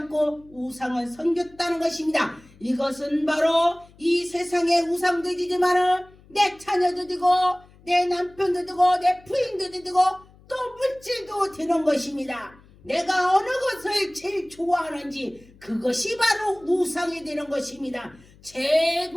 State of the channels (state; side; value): noise; left; hum, 26 dB below the sound